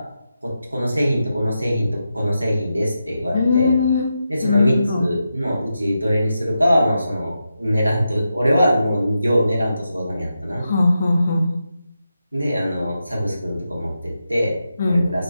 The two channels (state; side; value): inverted; both; correlation -0.87